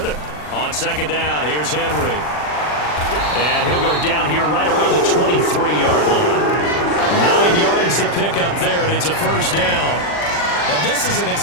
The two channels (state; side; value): late; right; 40 ms